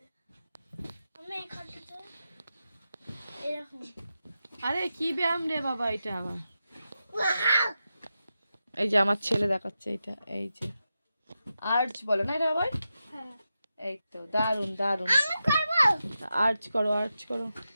আরে কি ব্যায়াম রে বাবা এটা আবার? এই যে আমার ছেলে দেখাচ্ছে এটা, এই যে আর্চ বলে না এটা আবার? এই তো দারুন দারুন, আর্চ করো।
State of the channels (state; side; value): inverted; both; correlation -0.90